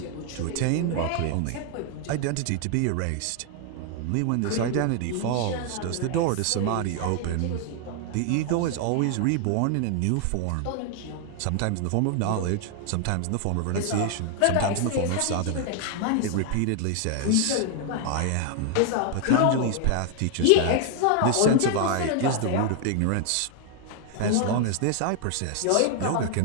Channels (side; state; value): both; different; correlation 0.00